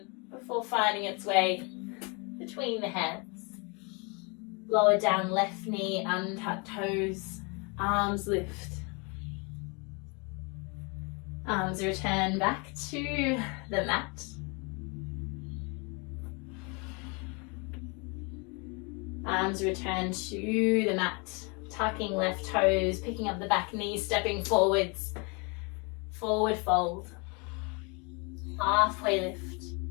before finding its way between the hands. Lower down left knee, untuck toes, arms lift. Arms return back to the mat. Arms return to the mat. Tucking left toes, picking up the back knee, stepping forwards. Forward fold. Halfway lift.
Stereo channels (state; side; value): quieter; right; 31.9 dB